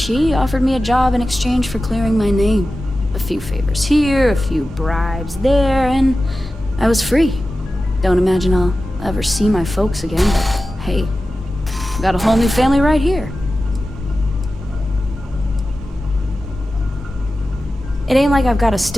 offered me a job in exchange for clearing my name. A few favors here, a few bribes there, and I was free. Don't imagine I'll ever see my folks again, but hey, I've got a whole new family right here. It ain't like I've got a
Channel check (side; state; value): both; normal; correlation 0.94